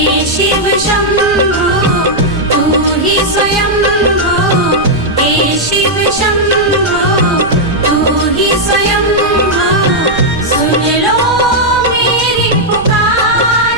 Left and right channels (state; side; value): noise; right; rumble, 13 dB below the sound